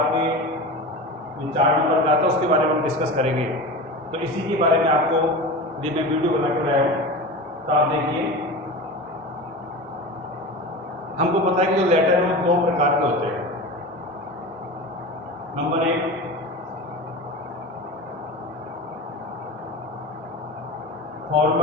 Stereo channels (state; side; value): normal; both; correlation 0.29